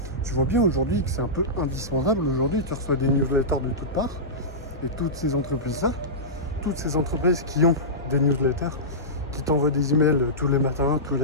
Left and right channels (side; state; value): both; normal; correlation -0.16